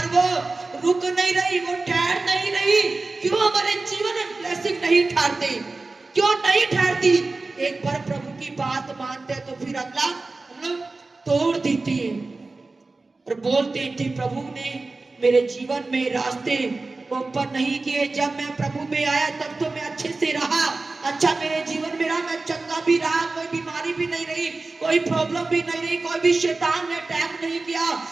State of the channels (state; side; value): quieter; left; 3.5 dB